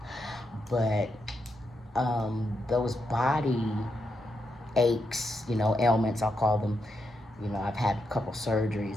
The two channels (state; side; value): normal; both; correlation 0.83